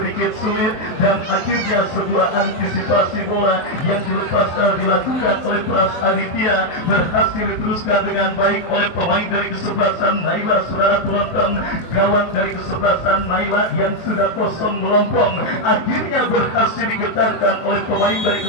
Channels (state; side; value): late; right; 23 ms